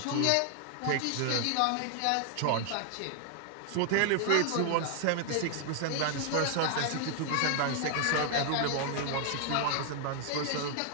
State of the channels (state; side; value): different; both; correlation 0.00